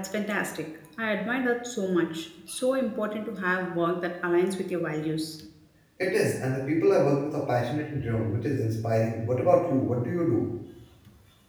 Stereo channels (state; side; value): identical; both; correlation 1.00